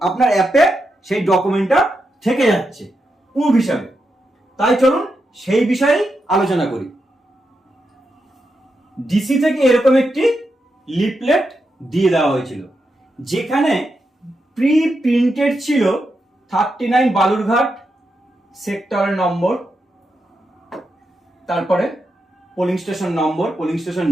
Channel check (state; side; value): normal; both; correlation 0.86